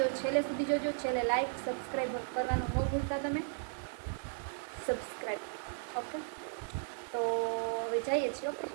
છેલ્લે સુધી જોજો. છેલ્લે લાઈક સબસ્ક્રાઈબ કરવાનું ન ભૂલતા તમે. સબસ્ક્રાઈબ. ઓકે, તો હવે જઈએ છીએ. ઓકે,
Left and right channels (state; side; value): silent; left; digital silence